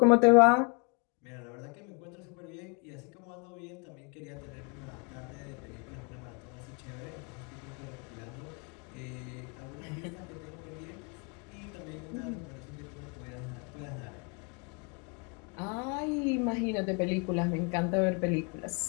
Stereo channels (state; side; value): quieter; right; 33.2 dB